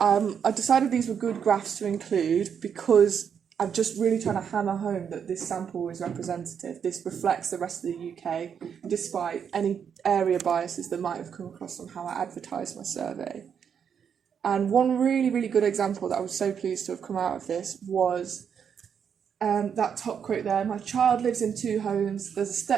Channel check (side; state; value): left; quieter; 7.5 dB